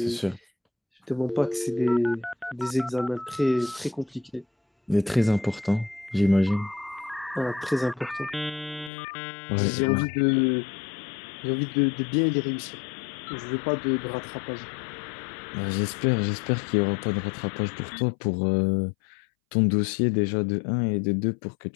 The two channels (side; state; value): right; drops out; at 8.9 s